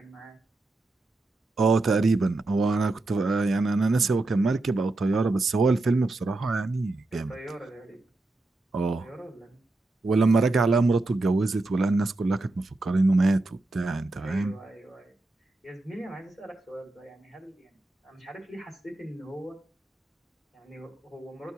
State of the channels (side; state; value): left; quieter; 3.0 dB